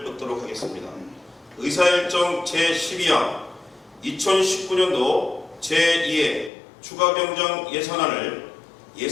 듣도록 하겠습니다. 의사일정 제12항 2019년도 제2회 추가경정 예산안을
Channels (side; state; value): right; drops out; at 6.5 s